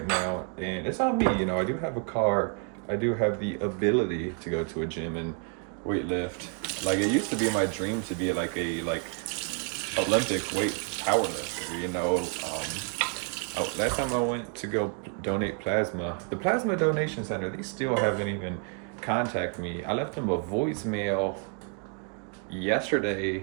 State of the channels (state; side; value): quieter; left; 39.0 dB